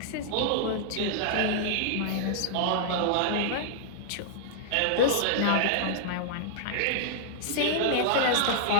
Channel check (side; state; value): both; different; correlation -0.01